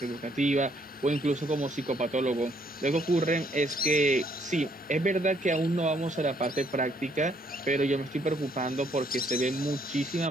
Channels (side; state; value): both; normal; correlation 0.68